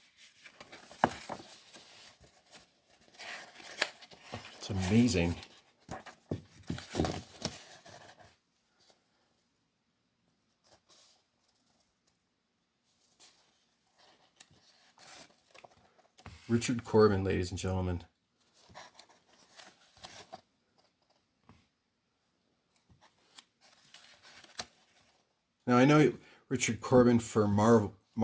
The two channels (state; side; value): identical; both; correlation 1.00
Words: It's amazing. Richard Corben, ladies and gentlemen. Now I know Richard Corben for